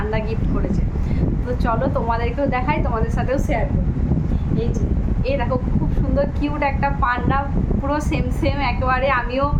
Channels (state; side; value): identical; both; correlation 1.00